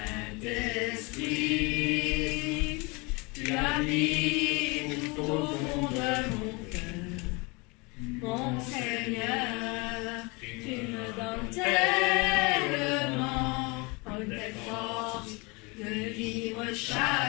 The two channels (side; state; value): right; quieter; 28.1 dB